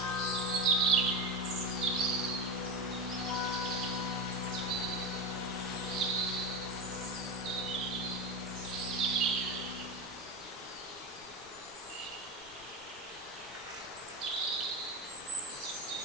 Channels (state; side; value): noise; left; rumble, 24 dB below the sound